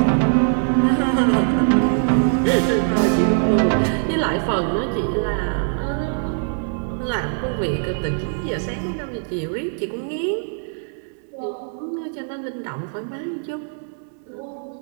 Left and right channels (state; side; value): silent; left; digital silence